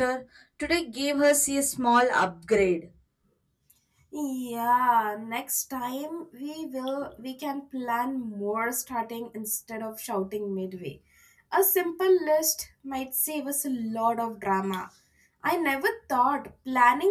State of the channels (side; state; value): both; identical; correlation 1.00